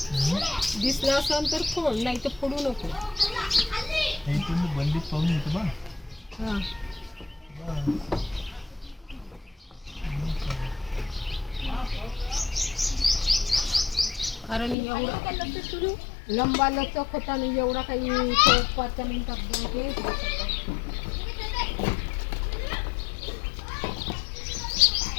दिसला असेल तर फोड, नाही तर फोडू नको. हे तुम्ही बंदीत पाहून येतो बा. हा. कारण एवढा लंबा लचक होता आणि एवढा काही 5 मिनिटात हे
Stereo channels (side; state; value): right; drops out; at 14.8 s